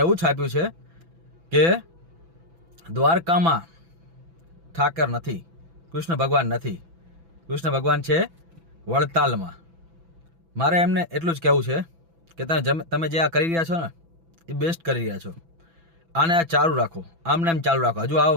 એવું છાપ્યું છે કે દ્વારકામાં ઠાકર નથી, કૃષ્ણ ભગવાન નથી, કૃષ્ણ ભગવાન છે વડતાલમાં. મારે એમને એટલું જ કહેવું છે કે તમે જે આ કરી રહ્યા છો ને એ બેસ્ટ કરી રહ્યા છો. આને આ ચાલુ રાખો, આમને એમ ચાલુ રાખો, હજુ આવો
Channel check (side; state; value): left; late; 6.0 ms